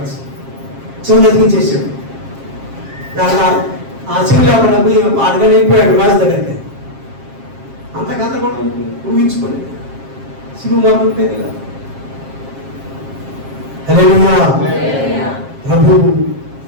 చెవులు ఎదిగించేసాడు. ఆ చెవులు ఎవరు అడగని వెళ్ళిపోయాడు వారి దగ్గరికి. అంతకంత కూడా ఊహించుకోలేదు. శిలువ మోతు ఉంటుంది కదా. హల్లెలూయా. ప్రభు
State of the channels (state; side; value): late; left; 7.4 ms